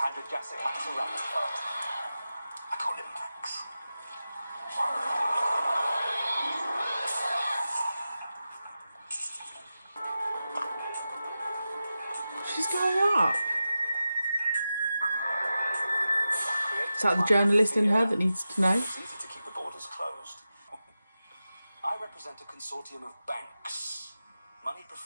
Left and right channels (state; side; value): inverted; both; correlation -0.93